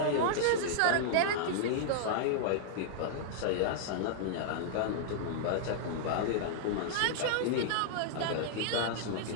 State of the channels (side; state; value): both; different; correlation -0.01